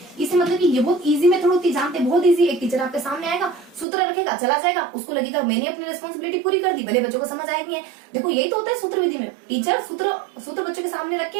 इससे मतलब कि ये बहुत इजी मेथड होती है, जानते बहुत इजी। एक टीचर आपके सामने आएगा, सूत्र रखेगा, चला जाएगा, उसको लगेगा मैंने अपनी रिस्पॉन्सिबिलिटी पूरी कर दी, भले बच्चों को समझ आएगी है। देखो, यही तो होता है सूत्र विधि में। टीचर सूत्र बच्चों के सामने रख के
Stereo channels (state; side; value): drops out; left; at 3.9 s